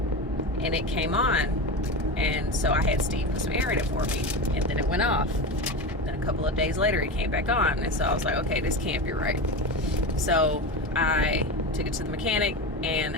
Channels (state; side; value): normal; both; correlation 0.23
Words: and it came on, and so I had Steve put some air in it for me, and then it went off. Then a couple of days later it came back on, and so I was like, okay, this can't be right. So I took it to the mechanic, and